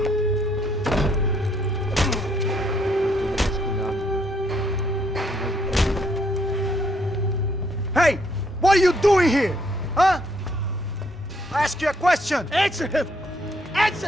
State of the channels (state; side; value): normal; both; correlation 0.70